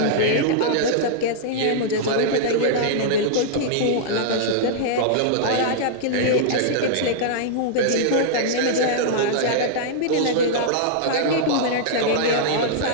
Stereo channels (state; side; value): different; both; correlation -0.02